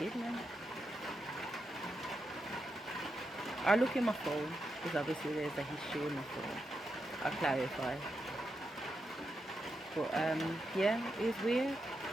man. I look in my phone, because obviously there's a history in my phone. I'll clarify. But yeah, it was weird.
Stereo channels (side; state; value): both; normal; correlation 0.86